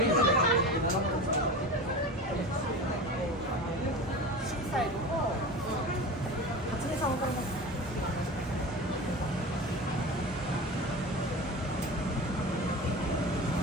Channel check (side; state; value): both; normal; correlation 0.31